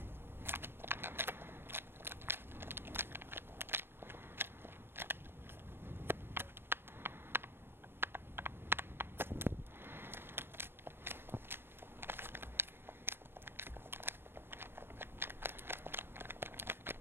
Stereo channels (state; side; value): late; left; 0.10 ms